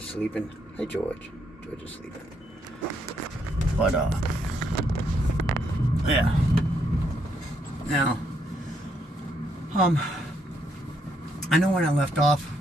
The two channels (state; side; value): normal; both; correlation 0.74